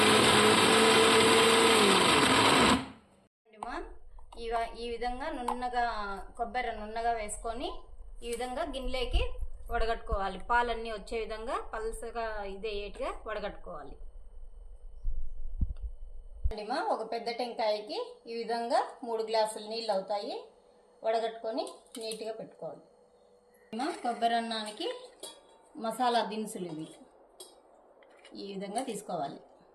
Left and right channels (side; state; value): both; identical; correlation 1.00